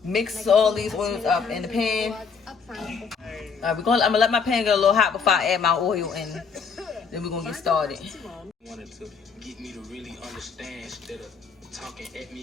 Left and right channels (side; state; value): right; quieter; 5.6 dB